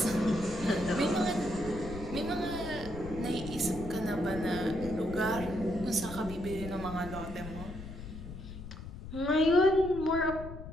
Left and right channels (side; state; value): left; noise; rumble, 11 dB below the sound